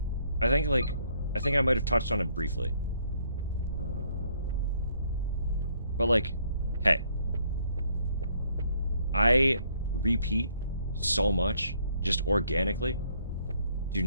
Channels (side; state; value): both; inverted; correlation -0.68